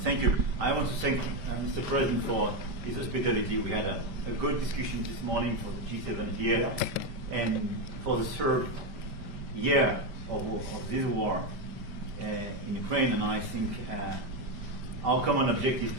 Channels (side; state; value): left; late; 5.1 ms